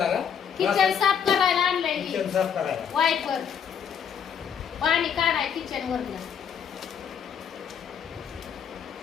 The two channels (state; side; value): quieter; right; 7.8 dB